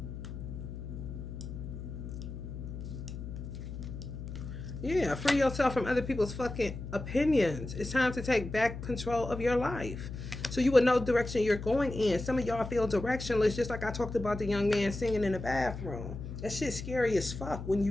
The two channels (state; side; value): noise; left; hum, 8 dB below the sound